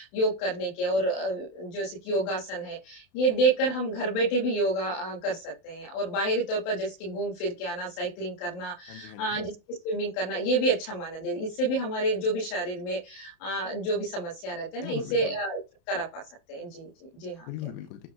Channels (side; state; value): right; late; 31 ms